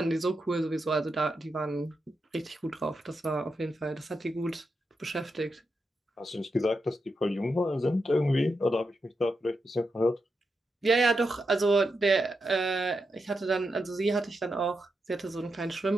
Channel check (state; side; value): normal; both; correlation 0.86